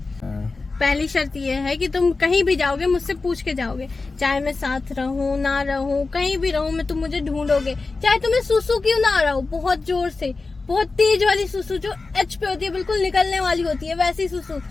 पहली शर्त ये है कि तुम कहीं भी जाओगे मुझसे पूछ के जाओगे, चाहे मैं साथ रहूं ना रहूं, कहीं भी रहूं मैं, तुम मुझे ढूंढोगे, चाहे तुम्हें सुसु क्यों ना आ रहा हो, बहुत जोर से, बहुत तेज वाली सुसु जो एच पे होती है, बिल्कुल निकलने वाली होती है वैसी सुसु,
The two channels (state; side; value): quieter; right; 3.8 dB